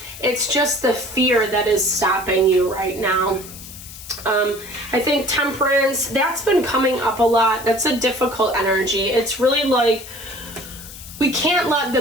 It's just the fear that is stopping you right now. I think Temperance, that's been coming up a lot. That's a difficult energy. It's really like, we can't let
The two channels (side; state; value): left; noise; hiss, 15 dB below the sound